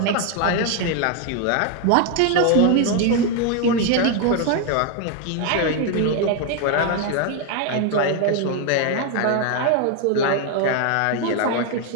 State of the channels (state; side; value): different; both; correlation 0.01